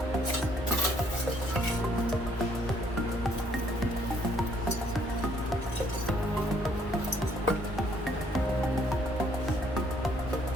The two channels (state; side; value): normal; both; correlation 0.65